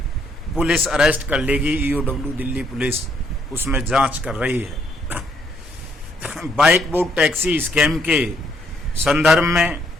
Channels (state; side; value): normal; both; correlation 0.70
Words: पुलिस अरेस्ट कर लेगी। EOW दिल्ली पुलिस उसमें जांच कर रही है। बाइक बोट टैक्सी स्कैम के संदर्भ में,